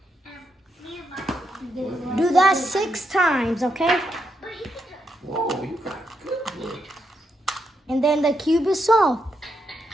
Do that 6 times, okay? And then the cube is solved.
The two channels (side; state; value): both; normal; correlation 0.81